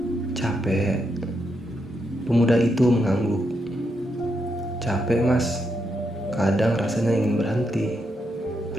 "Capek?" Pemuda itu mengangguk. "Capek, Mas. Kadang rasanya ingin berhenti."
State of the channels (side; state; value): both; normal; correlation 0.82